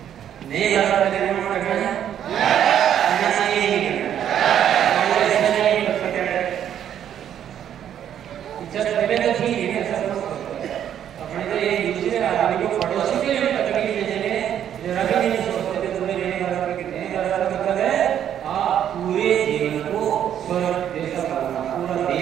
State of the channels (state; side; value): quieter; left; 9.9 dB